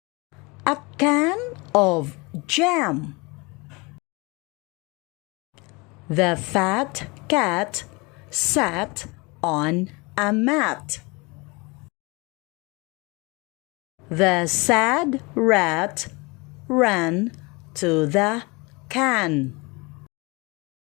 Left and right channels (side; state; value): right; quieter; 26.8 dB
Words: of jam. The fat cat sat on a mat. The sad rat ran to the can.